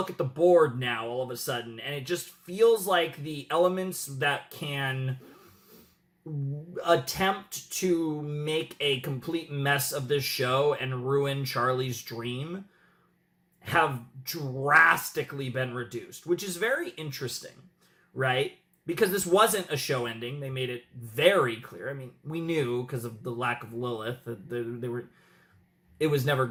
at the board now all of a sudden, and it just feels like the elements that can attempt to make a complete mess of this show and ruin Charlie's dream have drastically been reduced, which is very interesting, right? Because this wasn't a show ending. They made it very clear. I mean, we knew because of the lack of Lilith that it was never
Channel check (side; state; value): both; identical; correlation 1.00